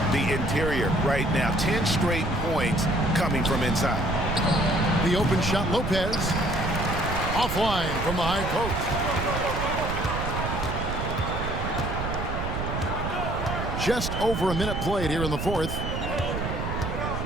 the interior right now. 10 straight points coming from inside. The open shot, Lopez. Offline from the high post. Just over a minute played here in the fourth.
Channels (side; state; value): right; noise; rumble, 4 dB below the sound